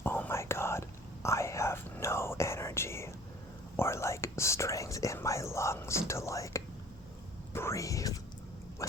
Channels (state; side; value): normal; both; correlation 0.50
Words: oh my god, I have no energy or like strength in my lungs to like breathe